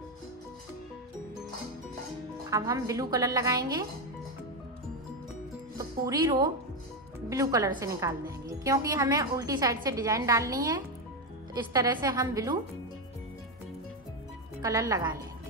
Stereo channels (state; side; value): normal; both; correlation 0.09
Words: अब हम ब्लू कलर लगाएंगे। तो पूरी रो ब्लू कलर से निकाल देंगे, क्योंकि हमें उल्टी साइड से डिजाइन डालनी है। तो इस तरह से हम ब्लू कलर लगा लेंगे।